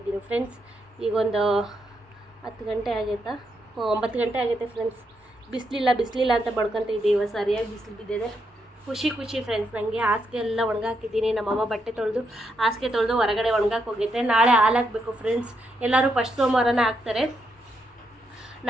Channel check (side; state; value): both; normal; correlation 0.80